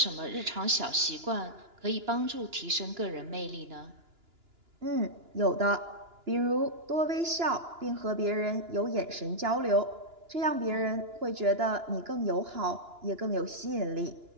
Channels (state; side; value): late; left; 2.9 ms